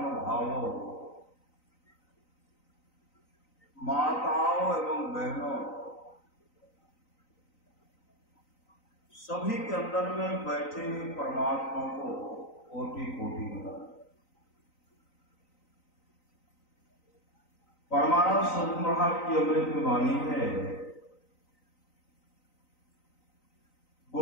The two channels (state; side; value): late; right; 3.9 ms